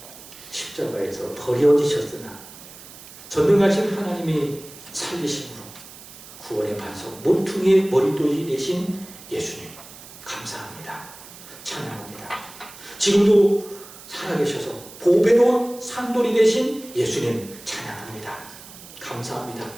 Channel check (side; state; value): right; noise; hiss, 18 dB below the sound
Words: 십자가에서 버려지셨으나 전능하신 하나님이 살리심으로 구원의 반석 모퉁이의 머리돌이 되신 예수님 감사합니다. 찬양합니다. 지금도 살아계셔서 보배로운 산돌이 되신 예수님 찬양합니다. 감사합니다.